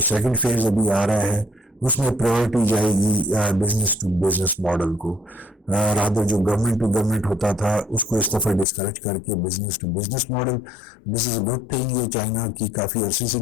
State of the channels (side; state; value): right; drops out; at 8.7 s